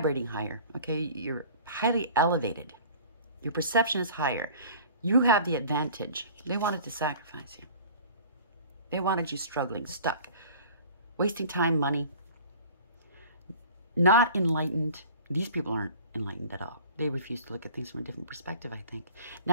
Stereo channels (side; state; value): both; inverted; correlation -0.44